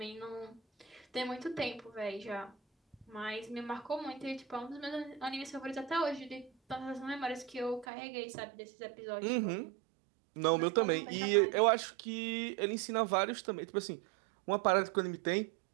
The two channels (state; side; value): drops out; left; at 7.9 s